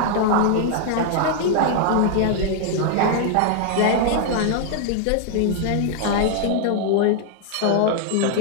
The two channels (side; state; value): both; different; correlation 0.00